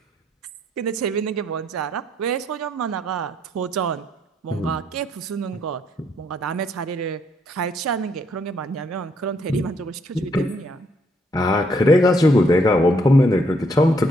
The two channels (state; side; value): normal; both; correlation 0.71